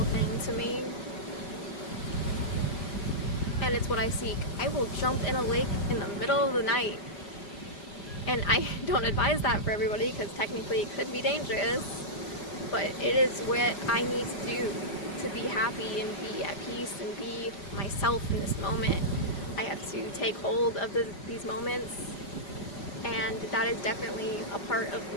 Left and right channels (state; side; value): late; right; 5.0 ms